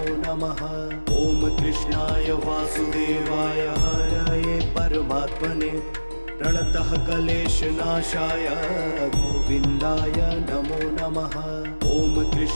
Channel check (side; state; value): both; inverted; correlation -1.00